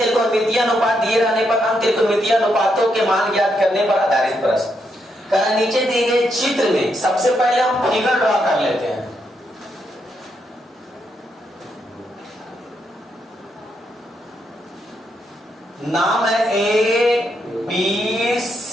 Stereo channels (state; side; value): normal; both; correlation 0.79